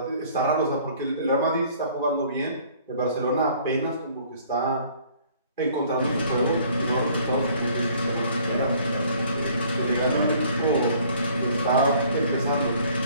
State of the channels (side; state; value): both; inverted; correlation -0.57